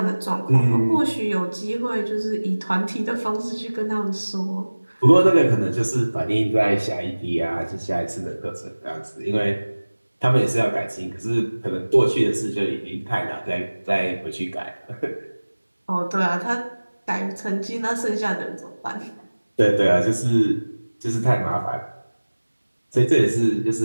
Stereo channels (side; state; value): both; inverted; correlation -1.00